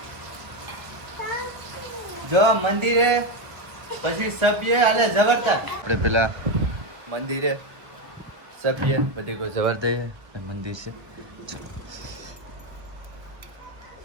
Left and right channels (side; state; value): left; late; 1.1 ms